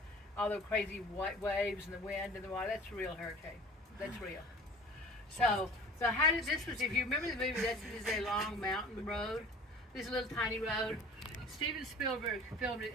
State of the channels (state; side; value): normal; both; correlation 0.44